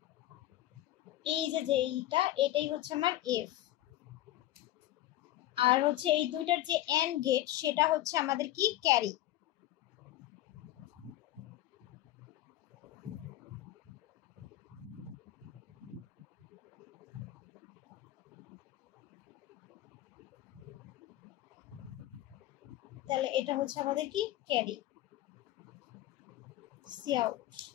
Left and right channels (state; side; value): quieter; right; 14.8 dB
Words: এই যে এইটা এটাই হচ্ছে আমার এফ, আর হচ্ছে এই দুইটার যে এন্ড গেট সেটা হচ্ছে আমাদের কি ক্যারি। তাহলে এটা হচ্ছে আমাদের কি ক্যারি সি আউট।